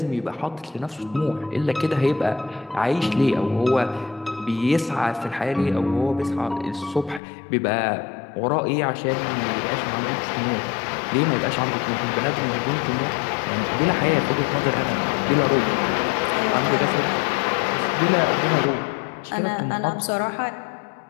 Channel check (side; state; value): right; drops out; at 7.2 s